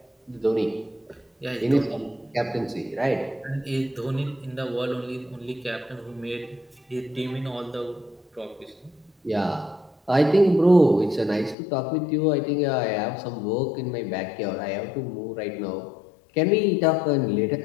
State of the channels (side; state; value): right; drops out; at 11.6 s